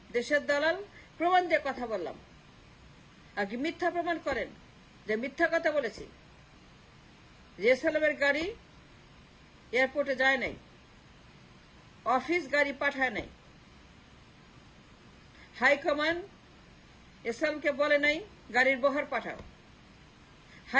দেশের দালাল, প্রমাণ দিয়ে কথা বললাম। আমাকে মিথ্যা প্রমাণ করেন যে মিথ্যা কথা বলেছি, যে এসালামের গাড়ি এয়ারপোর্টে যায় নাই, অফিস গাড়ি পাঠায় নাই, হাইকমান্ড এসালামকে বলে নাই গাড়ির বহর পাঠাও,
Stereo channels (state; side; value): identical; both; correlation 1.00